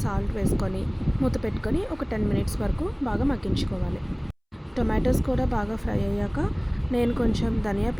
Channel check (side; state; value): both; identical; correlation 1.00